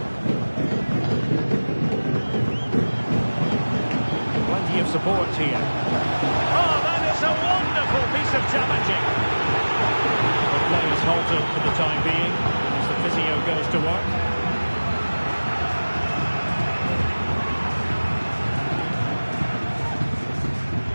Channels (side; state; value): both; inverted; correlation -1.00